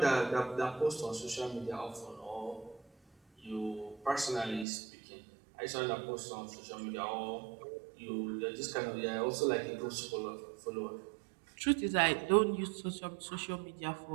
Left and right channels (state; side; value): drops out; left; at 4.7 s